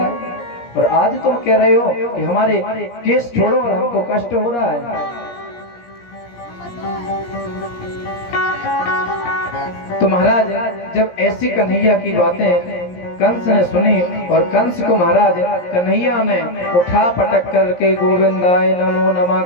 और आज तुम कह रहे हो कि हमारे केस छोड़ो और हमको कष्ट हो रहा है। तो महाराज जब ऐसी कन्हैया की बातें कंस ने सुनी, और कंस को महाराज कन्हैया ने उठा पटक करके गोविंदाय नमो नमः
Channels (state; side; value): late; right; 17 ms